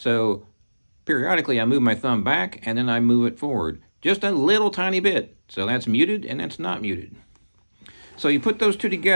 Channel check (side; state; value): both; inverted; correlation -1.00